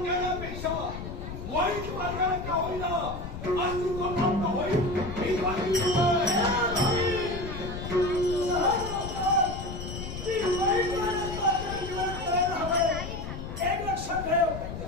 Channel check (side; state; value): left; noise; rumble, 8 dB below the sound